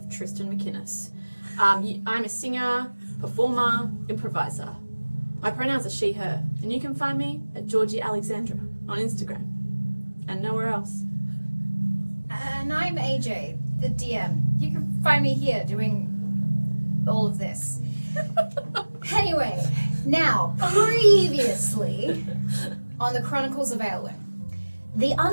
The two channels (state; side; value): inverted; both; correlation -1.00